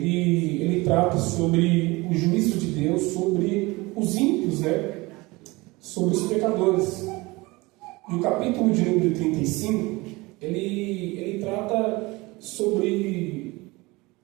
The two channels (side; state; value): left; quieter; 22.9 dB